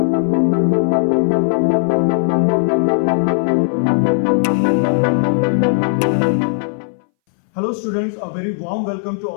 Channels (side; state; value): right; silent; 63 dB below the other